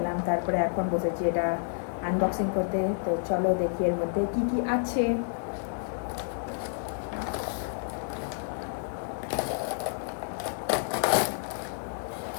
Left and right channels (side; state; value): right; silent; digital silence